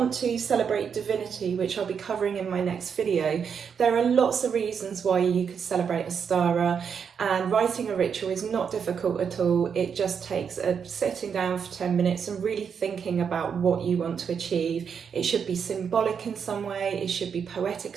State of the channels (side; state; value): left; quieter; 6.9 dB